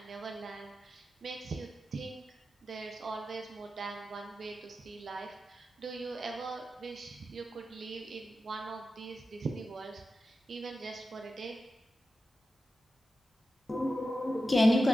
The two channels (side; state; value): both; normal; correlation 0.92